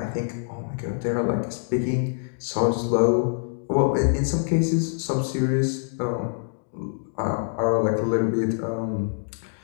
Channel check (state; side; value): silent; right; digital silence